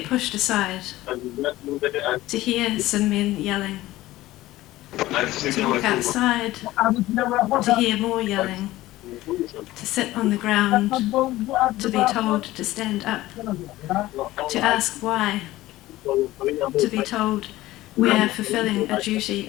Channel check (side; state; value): right; quieter; 16.8 dB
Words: pushed aside, to hear some men yelling, to walk outside, to hear more yelling, to sit on the ground, to be told to stand up, to ask why, to be told we are fulfilling a duty